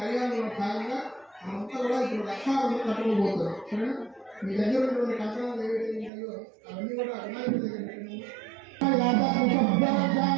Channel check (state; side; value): drops out; left; at 6.1 s